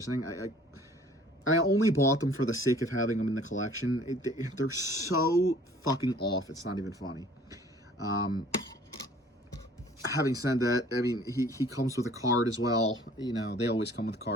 I only bought them for the sake of having them in the collection. They're so fucking off, it's not even funny. Having said that, I mean, he comes with a card as well. You know, they always come with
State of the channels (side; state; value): both; normal; correlation 0.53